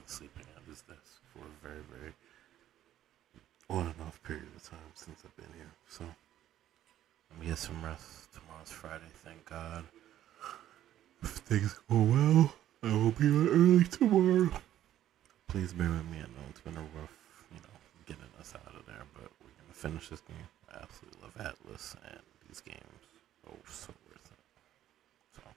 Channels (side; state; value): left; quieter; 12.2 dB